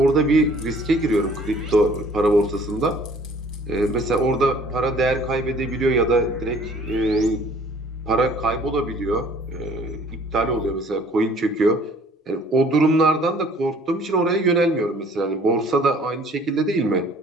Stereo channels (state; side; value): normal; both; correlation 0.55